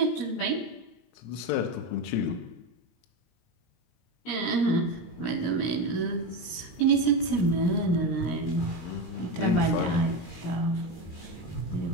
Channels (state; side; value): late; right; 17 ms